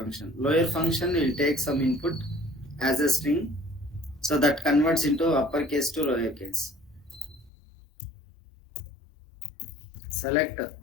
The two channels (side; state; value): right; drops out; at 7.5 s